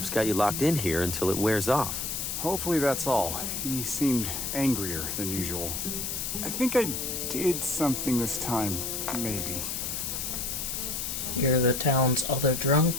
got you locked in here until it wears off. Hopefully that's all. He seemed angrier than usual. I think I did something this time, maybe. You're the town's other drunk?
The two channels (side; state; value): left; noise; hiss, 3 dB below the sound